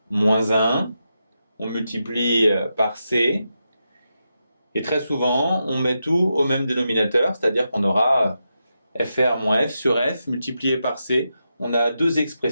moins 1. On multiplie par C. Et très souvent, on met tout au même dénominateur, c'est-à-dire qu'on aura FR moins F sur F multiplié par C. On a deux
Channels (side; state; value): both; inverted; correlation -0.87